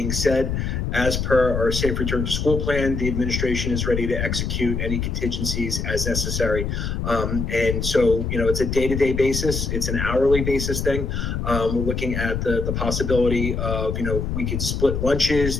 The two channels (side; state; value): left; noise; rumble, 2 dB below the sound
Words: said, as per our Safe Return to School plan, the administration is ready to execute any contingencies as necessary. And so, it's a day-to-day basis. It's an hourly basis thing. We're looking at the possibility of, we could split lunches,